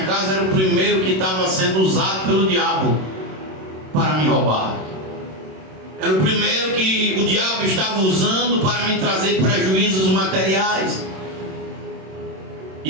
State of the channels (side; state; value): left; late; 26 ms